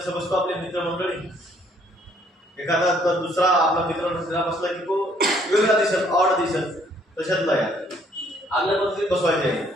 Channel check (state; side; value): normal; both; correlation 0.64